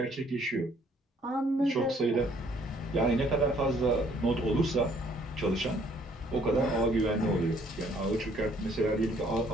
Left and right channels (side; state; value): both; normal; correlation 0.62